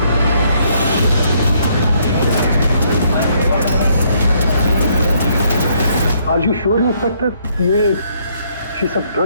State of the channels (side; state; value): both; inverted; correlation -0.69